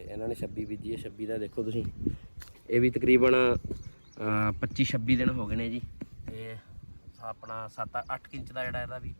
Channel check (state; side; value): inverted; both; correlation -1.00